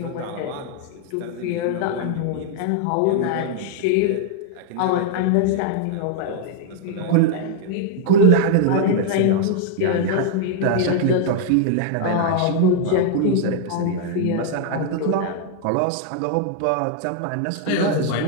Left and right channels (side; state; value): both; different; correlation 0.00